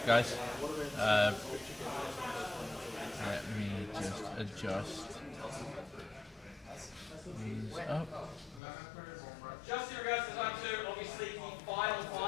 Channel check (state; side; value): drops out; right; at 8.6 s